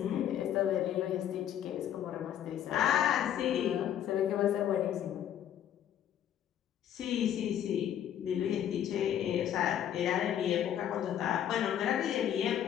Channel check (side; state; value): right; quieter; 10.4 dB